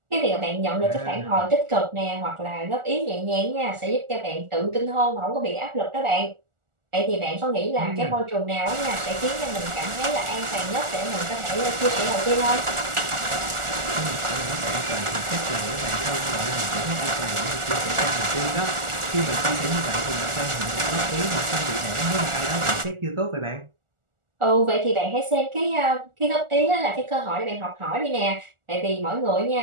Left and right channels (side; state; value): left; late; 1.4 ms